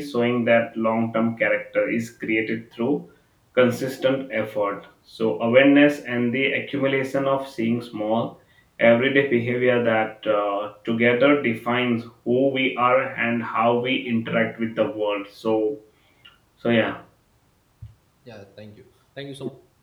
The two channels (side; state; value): both; identical; correlation 1.00